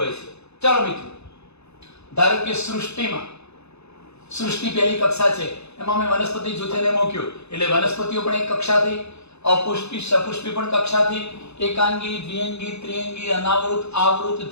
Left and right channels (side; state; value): right; late; 0.80 ms